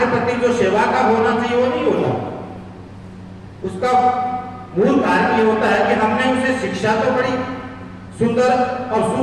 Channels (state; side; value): identical; both; correlation 1.00